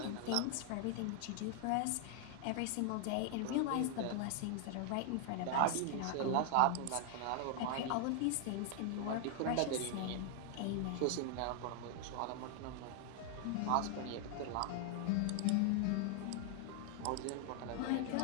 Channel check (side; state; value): both; different; correlation 0.00